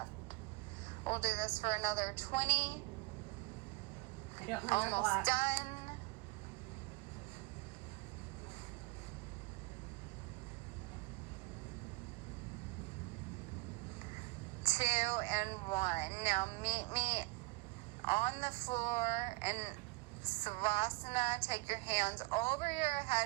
We'll do this for another 20. I don't have Almost done. Two and 1. Now meet me on the floor and Savasana. Take your hands over your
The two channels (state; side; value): quieter; left; 24.3 dB